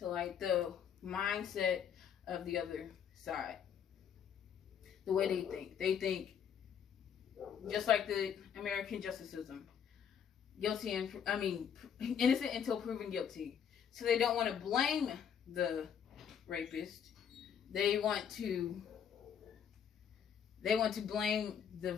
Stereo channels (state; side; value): quieter; right; 8.1 dB